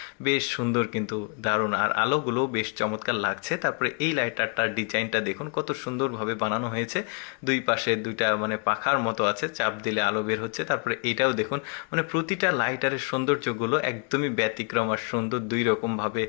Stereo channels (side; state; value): right; quieter; 37.2 dB